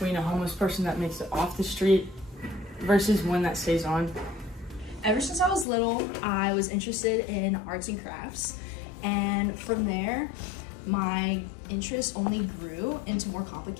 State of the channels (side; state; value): right; drops out; at 5.7 s